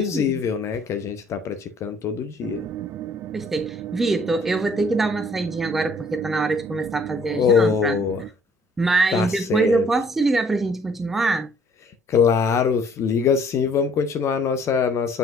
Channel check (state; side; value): normal; both; correlation 0.59